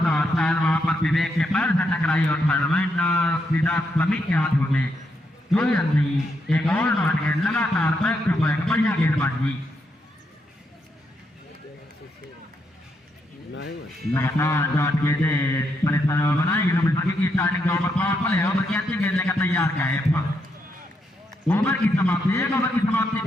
शायद वहां पर विवेक के पैर से टकराई और टूर्नामेंट सीधा समीर के हाथों में कोई रन नहीं। एक और डॉट गेंद लगातार बैक टू बैक बढ़िया गेंदबाजी लगातार डॉट गेंद परेशान बनाई की स्टार्टिंग का ओवर पावर प्ले ओवर की अच्छी गेंद लेकर तैयार का है। ओवर की समाप्ति एक ओवर की समाप्ति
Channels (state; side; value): normal; both; correlation 0.79